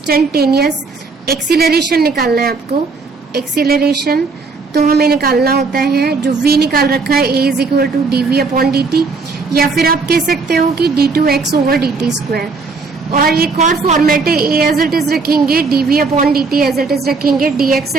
एक्सीलरेशन निकालना है आपको, एक्सीलरेशन तो हमें निकालना होता है, जो v निकाल रखा है a is equal to dv upon dt, या फिर आप कह सकते हो कि d2x ओवर dt स्क्वायर। और एक और फॉर्मेट है, a एज इट इज रखेंगे, dv upon dt as it is रखेंगे, dx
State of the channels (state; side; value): quieter; left; 4.3 dB